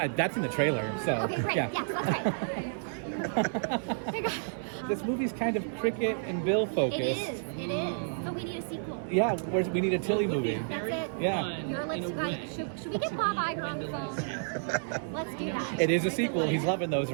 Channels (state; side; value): silent; left; 56 dB below the other